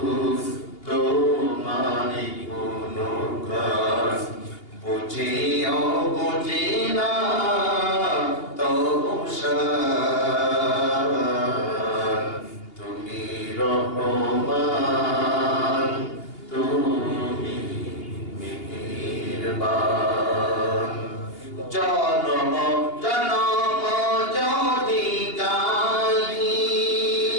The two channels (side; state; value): right; late; 2.8 ms